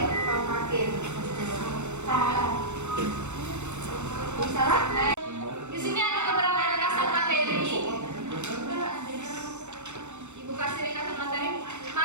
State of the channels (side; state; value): left; late; 0.83 ms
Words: tampakin. Bisa lah. Di sini ada beberapa ringkasan materi. Ibu kasih ringkasan materi.